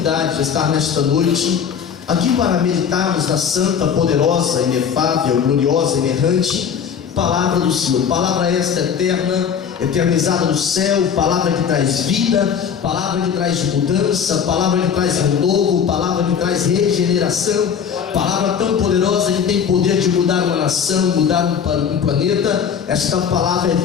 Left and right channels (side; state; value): right; quieter; 7.5 dB